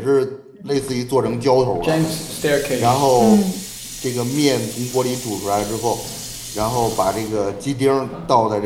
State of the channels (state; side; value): identical; both; correlation 1.00